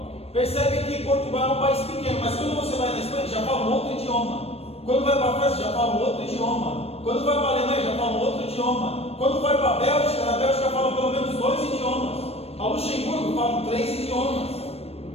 percebe que Portugal é um país pequeno, mas quando você vai na Espanha, já fala um outro idioma. Quando vai para a França, já fala um outro idioma. Quando vai para a Alemanha, já fala um outro idioma. Quando vai para a Bélgica, na Bélgica fala pelo menos 2 idiomas. A Luxemburgo falam 3 idiomas.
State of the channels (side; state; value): right; late; 0.29 ms